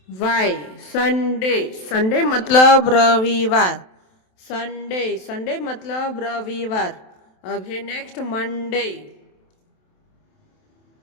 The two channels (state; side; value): late; right; 27 ms